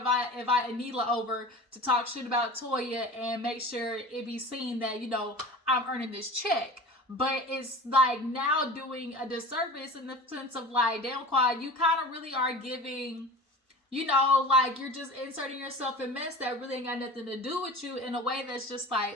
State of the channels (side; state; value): both; normal; correlation 0.36